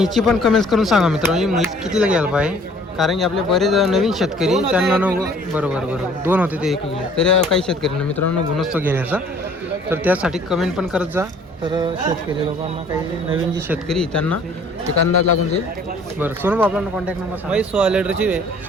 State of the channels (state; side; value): normal; both; correlation 0.55